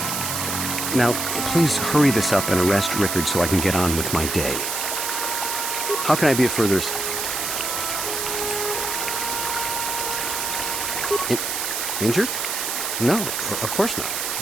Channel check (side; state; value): right; noise; hiss, 2 dB below the sound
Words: Now, please hurry this up and arrest Rickard so I can get on with my day. How can I be of further... Injured? No, of course